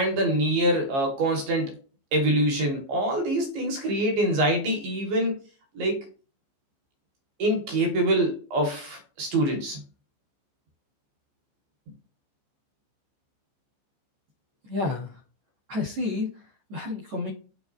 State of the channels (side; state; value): left; late; 15 ms